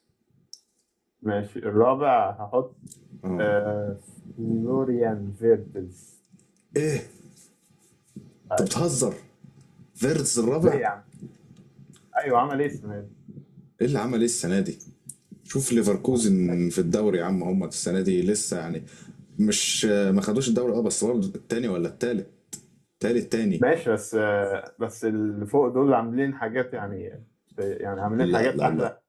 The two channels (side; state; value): both; identical; correlation 1.00